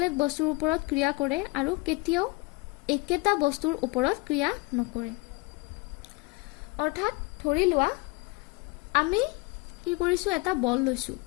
বস্তুৰ ওপৰত ক্ৰিয়া কৰে আৰু কেতিয়াও একেটা বস্তুৰ ওপৰত ক্ৰিয়া নকৰে। অৰ্থাৎ ধৰি লোৱা আমি কি কৰিছোঁ, এটা বল লৈছোঁ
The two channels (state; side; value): quieter; right; 25.4 dB